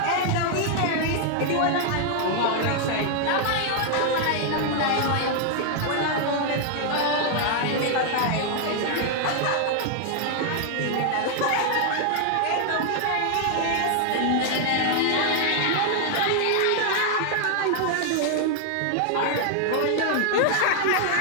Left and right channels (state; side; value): different; both; correlation 0.00